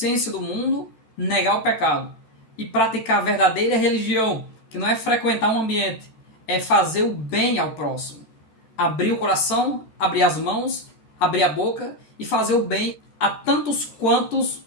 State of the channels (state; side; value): late; right; 13 ms